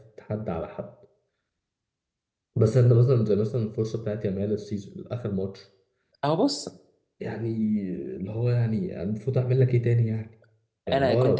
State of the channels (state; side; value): identical; both; correlation 1.00